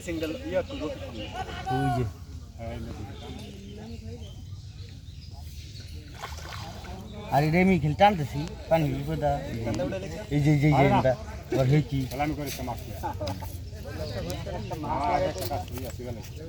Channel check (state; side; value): identical; both; correlation 1.00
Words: দল ইয়া তো ওই যে আরে রেমি খেল টানতেছি পানি বিপদা এই যে এটা আর হে কি খেলা আমি করে সমাজ